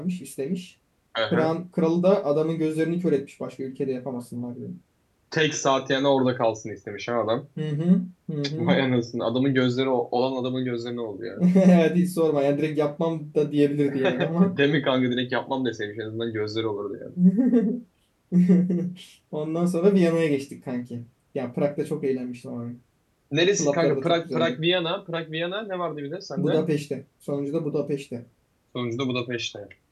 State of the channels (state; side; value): identical; both; correlation 1.00